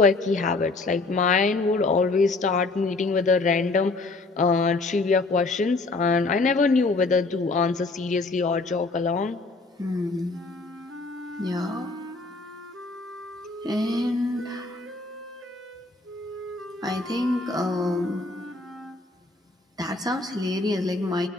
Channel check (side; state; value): right; quieter; 3.5 dB